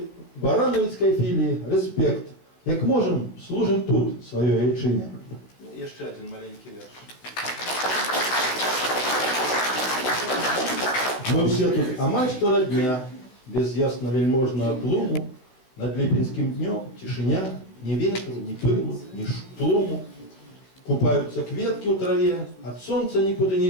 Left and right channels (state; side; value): late; right; 16 ms